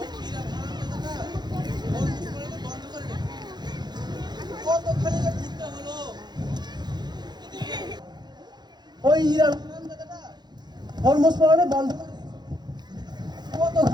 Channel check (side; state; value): left; late; 0.21 ms